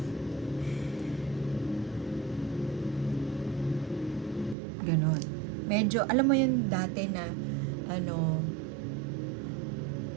ganon. Medyo, alam mo yun dati na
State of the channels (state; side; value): drops out; left; at 4.5 s